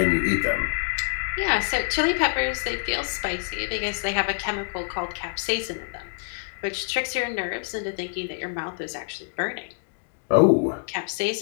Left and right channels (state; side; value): silent; right; digital silence